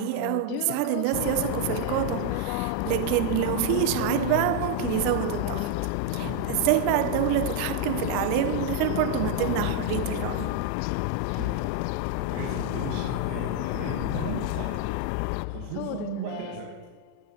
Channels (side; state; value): both; different; correlation 0.01